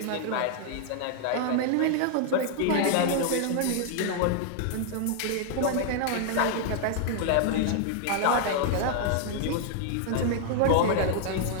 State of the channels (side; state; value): both; different; correlation 0.00